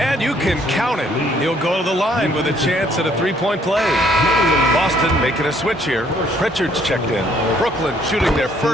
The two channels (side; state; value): both; normal; correlation 0.65